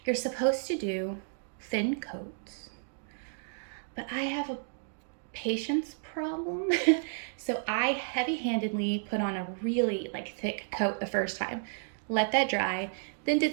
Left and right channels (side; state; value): left; silent; digital silence